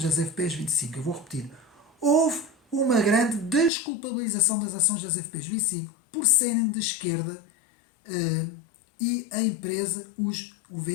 das FPs 25. Eu vou repetir. Houve uma grande desculpabilização das ações das FPs 25 por serem de esquerda e a empresa, os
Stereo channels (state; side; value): drops out; right; at 3.7 s